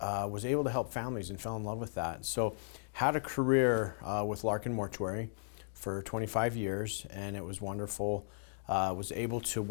was able to help families and fell in love with that. So had a career with Larkin Mortuary for 25 years, and it was wonderful. Was able to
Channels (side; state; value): right; silent; digital silence